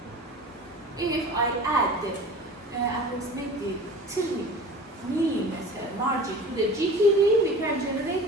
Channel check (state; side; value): normal; both; correlation 0.38